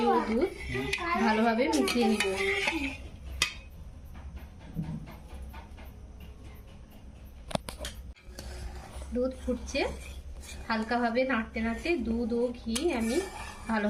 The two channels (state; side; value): identical; both; correlation 1.00